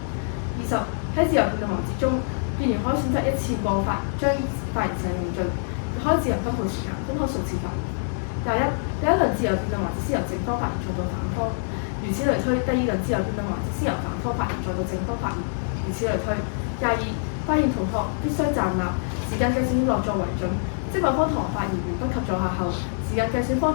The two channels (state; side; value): silent; right; digital silence